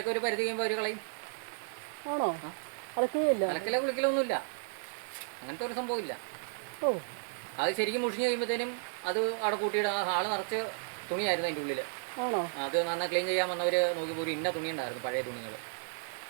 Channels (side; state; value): left; silent; digital silence